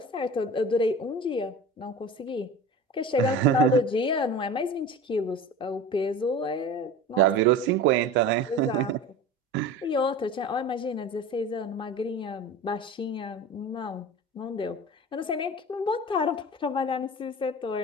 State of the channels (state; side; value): normal; both; correlation 0.34